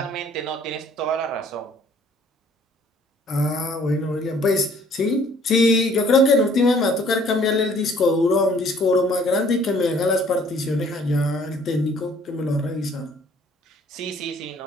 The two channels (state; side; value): normal; both; correlation 0.58